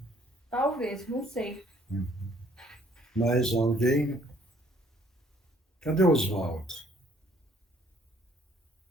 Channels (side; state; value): both; normal; correlation 0.62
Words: Talvez, não sei. Mais alguém? Cadê o Oswaldo?